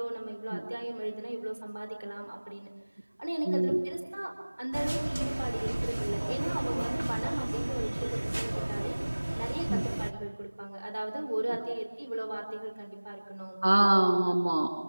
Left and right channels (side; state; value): both; inverted; correlation -1.00